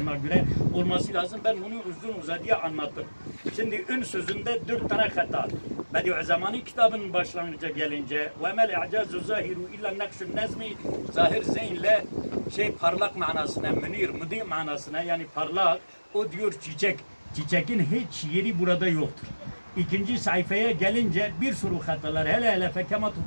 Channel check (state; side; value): inverted; both; correlation -1.00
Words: göre olması lazım. Ben bunu uzun uzadıya anlattım. Şimdi ün sözünde 4 tane hata. Bediüzzaman'ın kitabının başlangıca gelince ve mel i'cazu zahiru illa nakşun nezmi zahir zeynle parlak manasına, münir, müdi manasına yani parlak. O diyor çiçek. Çiçekin hiç yeri burada yoktur. İkinci sayfaya gelince bir sürü hatalar hele fekema